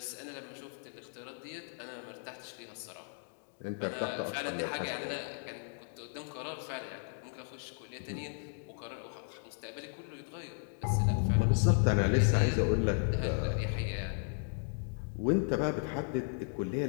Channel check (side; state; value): right; silent; 54 dB below the other